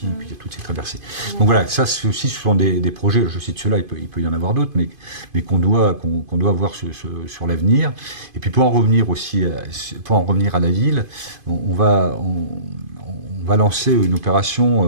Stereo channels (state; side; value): late; left; 2.5 ms